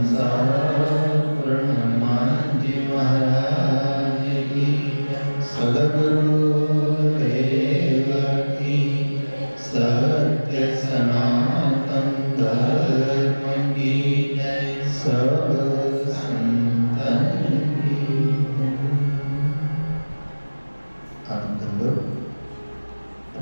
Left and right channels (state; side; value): inverted; both; correlation -1.00